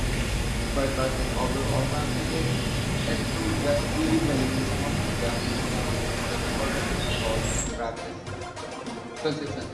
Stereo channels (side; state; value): both; identical; correlation 1.00